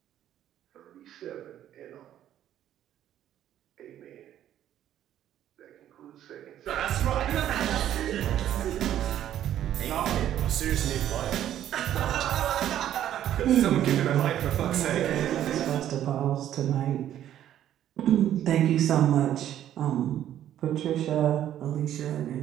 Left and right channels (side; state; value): left; quieter; 11.4 dB